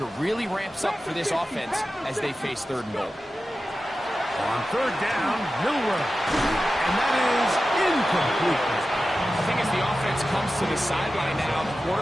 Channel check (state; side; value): normal; both; correlation 0.94